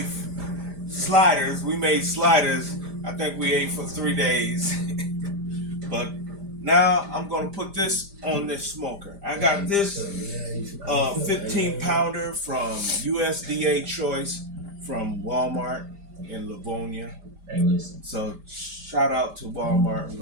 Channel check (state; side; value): late; left; 5.0 ms